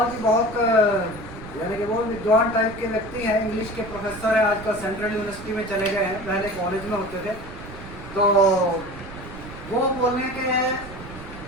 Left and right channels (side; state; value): right; noise; rumble, 14 dB below the sound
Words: जी बहुत यानी कि वो विद्वान टाइप के व्यक्ति हैं, इंग्लिश के प्रोफेसर हैं, आजकल सेंट्रल यूनिवर्सिटी में चले गए हैं, पहले कॉलेज में होते थे। तो वो बोलने के